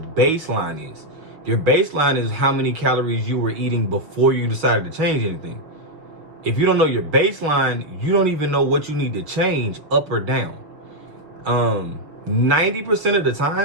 is. Your baseline is how many calories you were eating before you decided to change anything. If you don't know your baseline, you don't even know what you need to change up or down. 90% of the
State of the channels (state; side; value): late; left; 6.3 ms